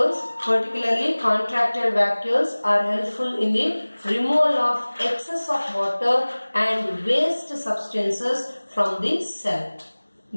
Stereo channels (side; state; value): both; inverted; correlation -1.00